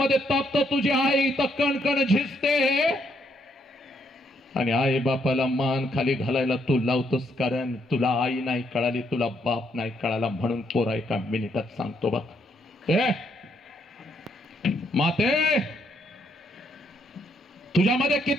तापतो, तुझी आई तर कणकण झिजते आणि आई बापाला मान खाली घालायला तू लावतोस. कारण तुला आई नाही कळाली, तुला बाप नाही कळाला. म्हणून पोरा एका मिनिटात सांगतो बघ, माते, तुझ्यामध्ये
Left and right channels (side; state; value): both; normal; correlation 0.74